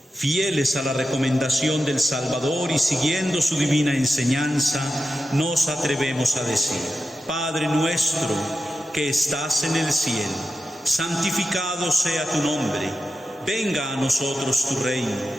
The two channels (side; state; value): both; normal; correlation 0.90